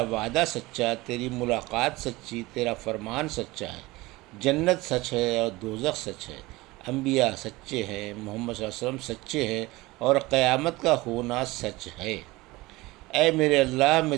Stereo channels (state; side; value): quieter; left; 20.8 dB